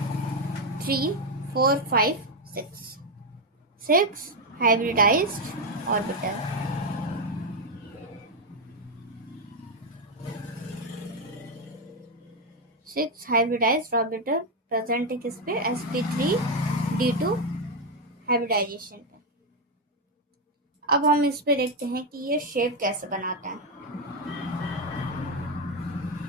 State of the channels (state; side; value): normal; both; correlation 0.05